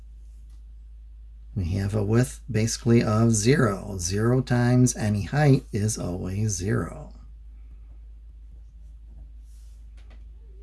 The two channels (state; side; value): identical; both; correlation 1.00